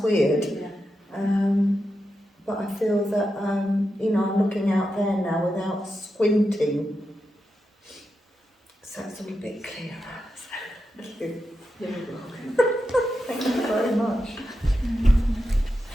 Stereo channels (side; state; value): both; normal; correlation 0.88